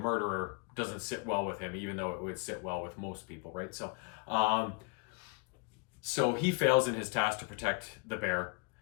doesn't sit well with him, even though it would sit well with most people, right? So so he fails in his task to protect the bear,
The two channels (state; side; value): quieter; right; 32.2 dB